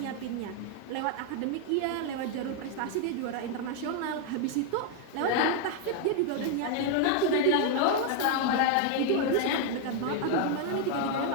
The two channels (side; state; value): both; different; correlation 0.00